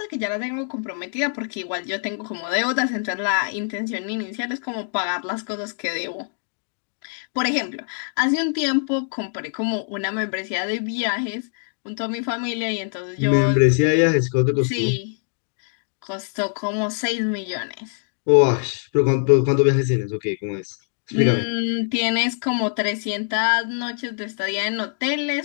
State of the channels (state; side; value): silent; right; 63 dB below the other